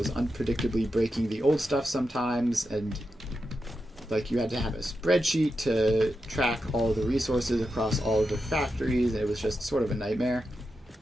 unpredictably breaking the old stuff sometimes, and like you had to have a spreadsheet to track all the resources across all of the factories, and it was just sort of a nightmare.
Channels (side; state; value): both; normal; correlation 0.88